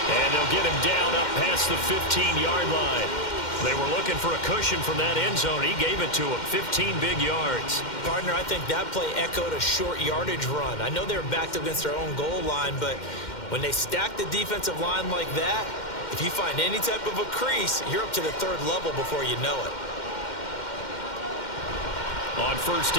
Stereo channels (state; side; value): late; right; 2.1 ms